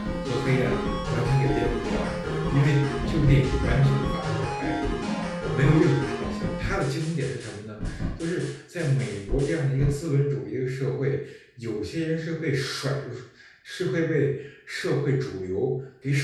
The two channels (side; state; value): both; identical; correlation 1.00